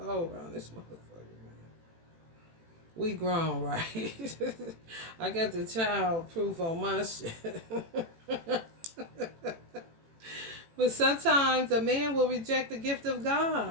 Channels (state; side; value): late; left; 18 ms